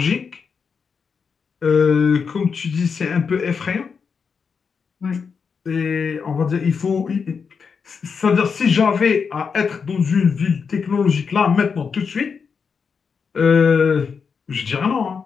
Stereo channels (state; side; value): quieter; right; 5.8 dB